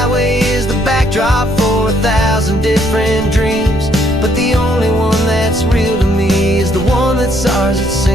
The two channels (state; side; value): noise; right; rumble, 11 dB below the sound